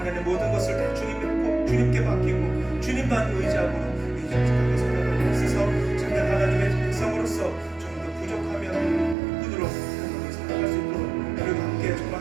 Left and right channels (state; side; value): drops out; left; at 9.2 s